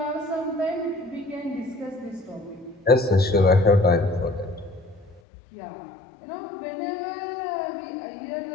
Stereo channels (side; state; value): right; drops out; at 5.2 s